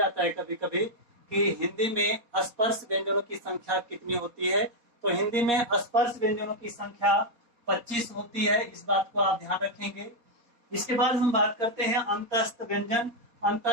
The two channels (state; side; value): late; left; 4.2 ms